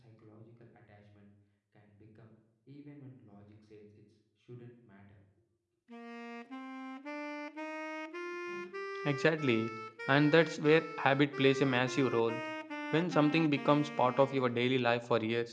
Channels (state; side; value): identical; both; correlation 1.00